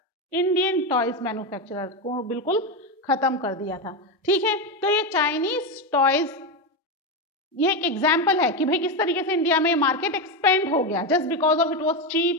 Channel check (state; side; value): normal; both; correlation 0.12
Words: Indian toys manufacturer को बिल्कुल खत्म कर दिया था। ठीक है, तो ये चाइनीज टॉयज ये एक एग्जाम्पल है कि भाई किस तरीके से इंडिया में मार्केट एक्सपेंड हो गया just because of it was